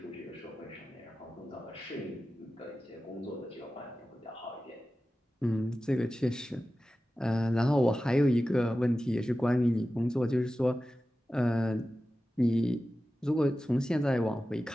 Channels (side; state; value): both; normal; correlation 0.94